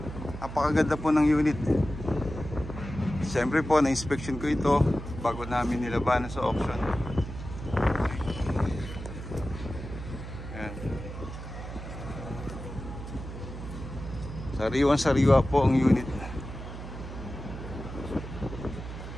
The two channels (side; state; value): right; noise; hum, 9 dB below the sound